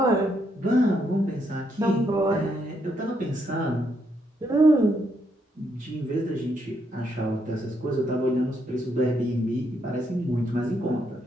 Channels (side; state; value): both; normal; correlation 0.76